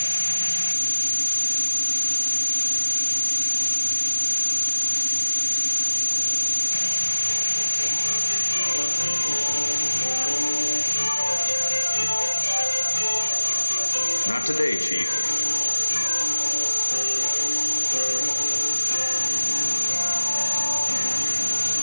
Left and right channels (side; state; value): both; inverted; correlation -1.00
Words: Not today, Chief.